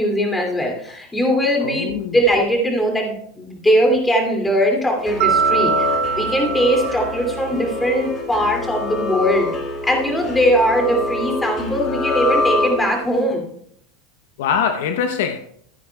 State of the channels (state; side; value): normal; both; correlation 0.49